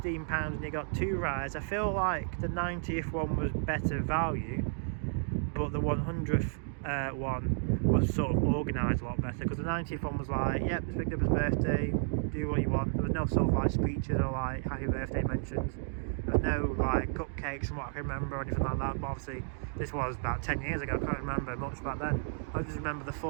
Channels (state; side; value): silent; left; digital silence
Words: and you got 2 rides. I feel like the 90th one was better value, but the 100th one was sort of organised a lot better, because the 90th one was like, yep, it's Big Dipper's birthday, do what you want. There was no sort of like speeches or like happy birthday mentions. There was no like cupcakes from what I can remember or anything like that. But obviously this was about 10 years ago, I can't remember much back then. I just remember the